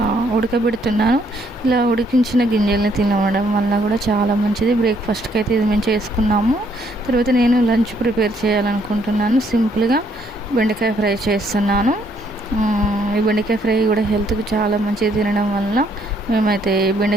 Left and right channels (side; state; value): both; normal; correlation 0.69